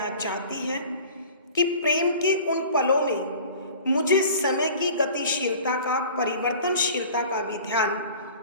चाहती है कि प्रेम के उन पलों में मुझे समय की गतिशीलता का, परिवर्तनशीलता का भी ध्यान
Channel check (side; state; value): both; inverted; correlation -0.43